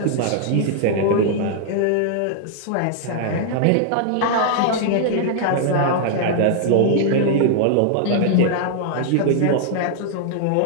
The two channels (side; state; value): both; different; correlation -0.01